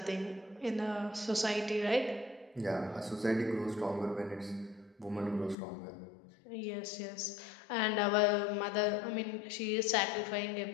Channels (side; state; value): right; drops out; at 5.6 s